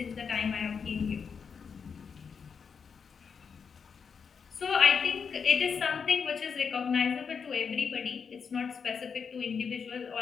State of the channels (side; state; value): right; quieter; 6.2 dB